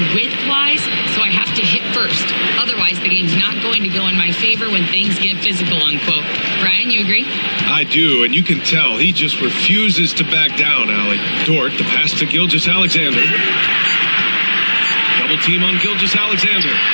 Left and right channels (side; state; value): both; inverted; correlation -1.00